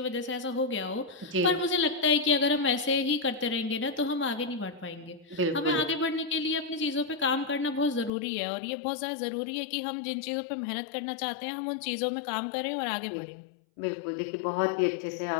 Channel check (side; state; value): right; drops out; at 8.1 s